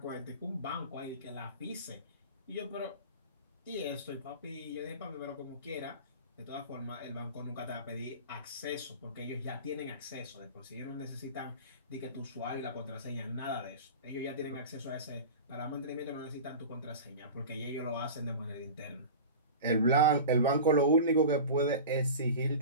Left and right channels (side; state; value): both; inverted; correlation -0.32